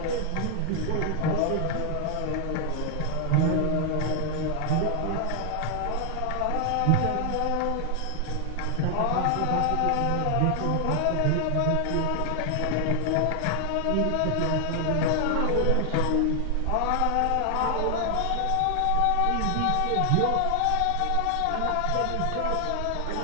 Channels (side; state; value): both; different; correlation 0.00